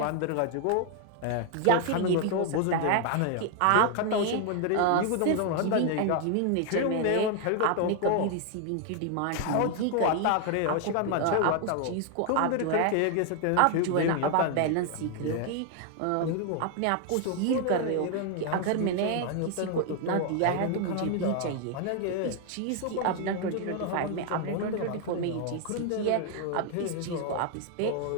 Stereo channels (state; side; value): different; both; correlation 0.00